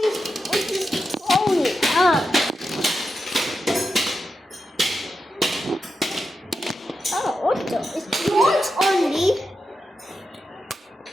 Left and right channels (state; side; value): normal; both; correlation 0.88